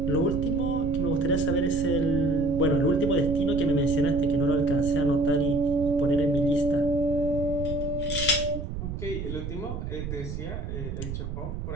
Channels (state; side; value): noise; right; rumble, 6 dB below the sound